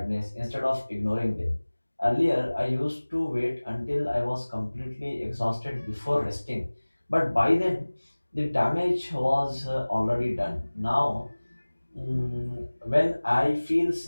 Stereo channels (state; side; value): inverted; both; correlation -1.00